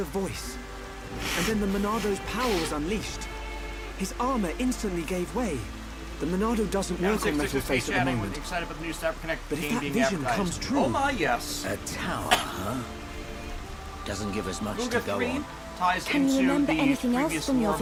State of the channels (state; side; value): identical; both; correlation 1.00